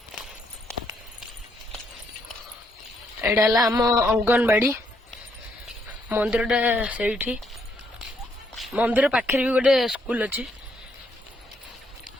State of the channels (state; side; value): normal; both; correlation 0.73